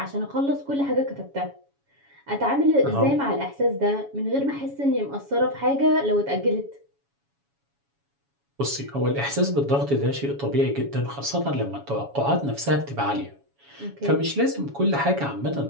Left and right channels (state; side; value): late; left; 7.1 ms